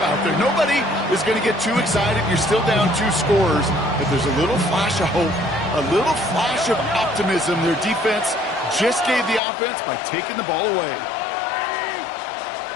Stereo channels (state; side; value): drops out; right; at 9.4 s